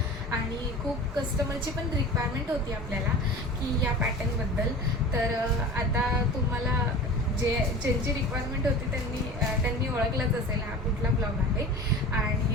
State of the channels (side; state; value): both; normal; correlation 0.37